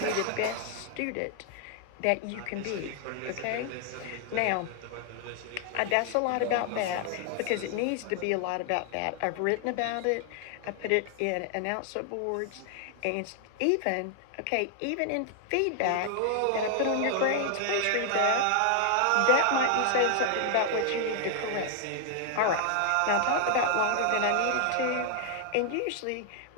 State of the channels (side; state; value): both; different; correlation 0.00